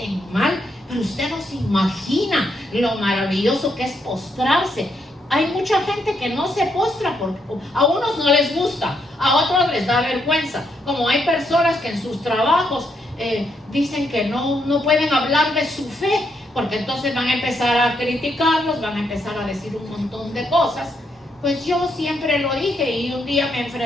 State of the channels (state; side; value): normal; both; correlation 0.77